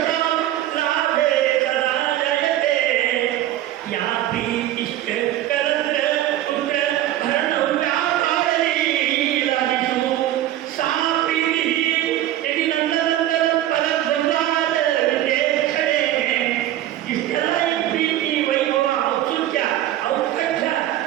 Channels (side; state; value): left; quieter; 13.2 dB